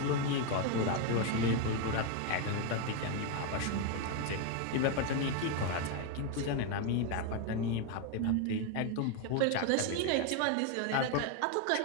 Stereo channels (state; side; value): different; both; correlation 0.01